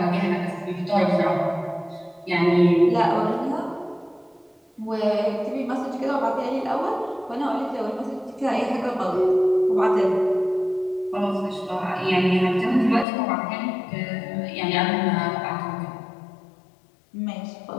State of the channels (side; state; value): right; drops out; at 13.1 s